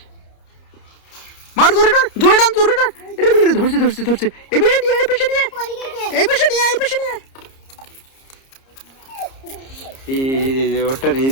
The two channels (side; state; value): right; late; 30 ms